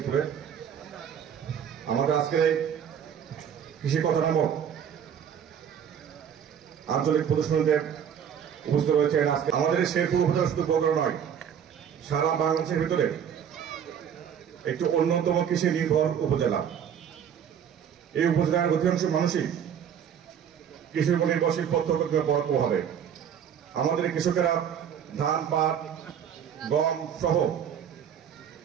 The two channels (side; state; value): left; quieter; 8.4 dB